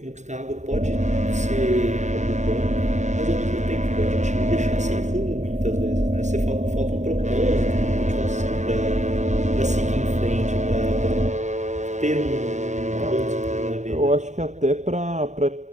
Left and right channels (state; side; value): late; left; 0.34 ms